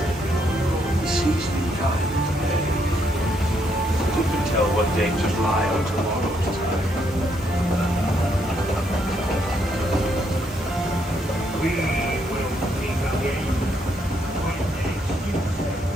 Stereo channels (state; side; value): normal; both; correlation 0.74